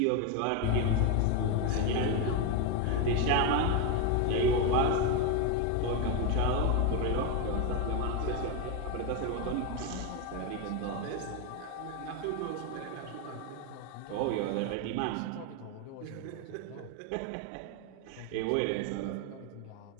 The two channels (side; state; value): both; different; correlation 0.02